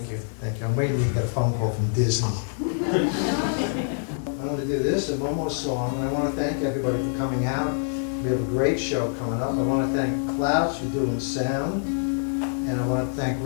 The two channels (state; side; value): silent; right; digital silence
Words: you. Thank you. I'm waiting till you get a phone call from Disney. I'm going to do this and one more song, and I want to thank everybody for coming out. We have a great show coming up. I want to thank Klaus for doing sound, and I want to thank